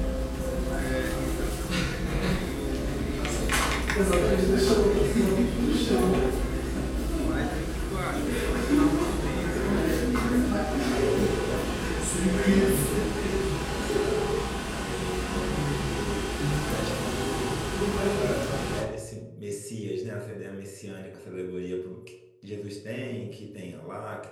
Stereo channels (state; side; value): identical; both; correlation 1.00